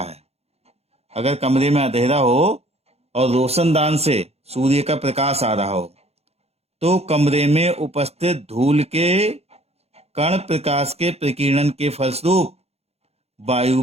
है। अगर कमरे में अंधेरा हो और रोशनदान से सूर्य का प्रकाश आ रहा हो, तो कमरे में उपस्थित धूल के कण प्रकाश के प्रकीर्णन के फलस्वरूप वायु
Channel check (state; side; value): late; left; 0.30 ms